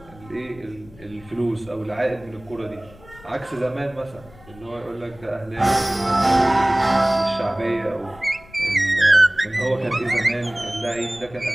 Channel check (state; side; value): noise; left; rumble, 23 dB below the sound